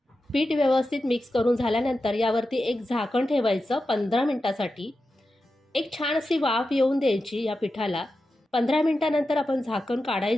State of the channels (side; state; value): both; normal; correlation 0.91